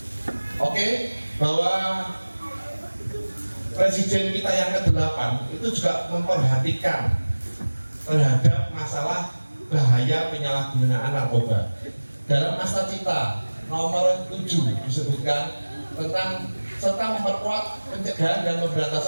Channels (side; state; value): both; inverted; correlation -1.00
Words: Oke, bahwa presiden kita yang ke-8 itu juga memperhatikan terhadap masalah bahaya penyalahgunaan narkoba. Dalam Asta Cita nomor 7 disebutkan tentang serta memperkuat pencegahan dan